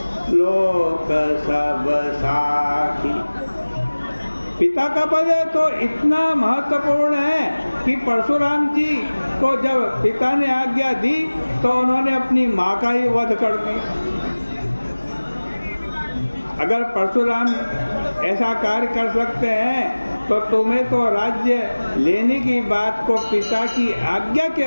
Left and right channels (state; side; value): inverted; both; correlation -1.00